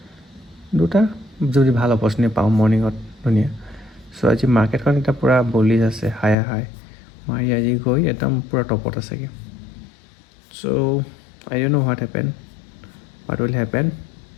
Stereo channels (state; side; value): drops out; right; at 6.4 s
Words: 2টা যদি ভাল অপৰচুনিটি পাওঁ মৰ্ণিঙত ধুনীয়া। চ' আজি মাৰ্কেটখন এতিয়া পূৰা বলিজ আছে, হাই মাৰি আজি গৈ একদম পূৰা টপত আছেগৈ। চ' I don't know what will happen.